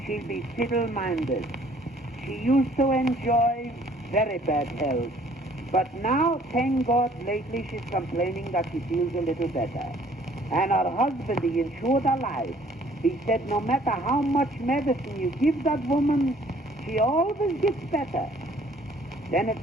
she'll be fiddle-minded. She used to enjoy very bad health. But now, thank God, lately she's complaining that she feels a little better. And her husband, he insured her life. He said no matter how much medicine you give that woman, she always gets better. Then it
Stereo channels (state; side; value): normal; both; correlation 0.58